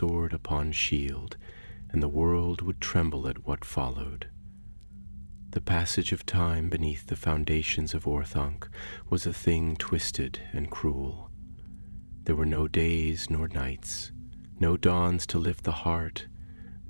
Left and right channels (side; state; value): both; inverted; correlation -1.00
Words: upon shield, and the world would tremble at what followed. The passage of time beneath the foundations of Orthanc was a thing twisted and cruel. There were no days nor nights, no dawns to lift the heart,